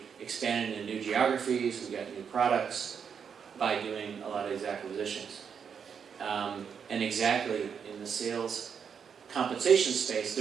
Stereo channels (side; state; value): left; quieter; 7.0 dB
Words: expanded into new geographies, we got new products by doing a lot of these acquisitions. And exactly in the sales compensation space,